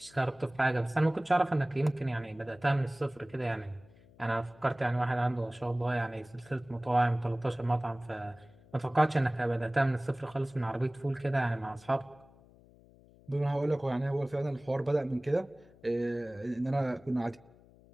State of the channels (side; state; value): left; noise; hum, 26 dB below the sound